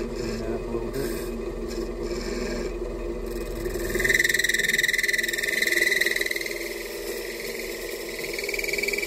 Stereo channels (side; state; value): both; identical; correlation 1.00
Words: that up a little bit.